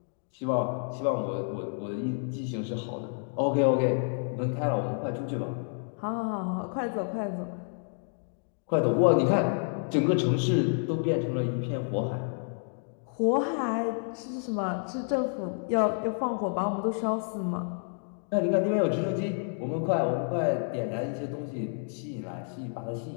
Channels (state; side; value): silent; right; 58 dB below the other